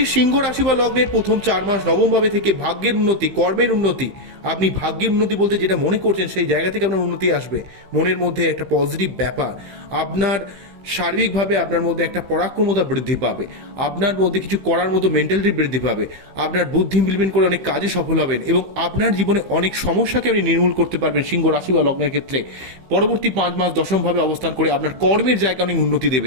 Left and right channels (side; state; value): left; late; 15 ms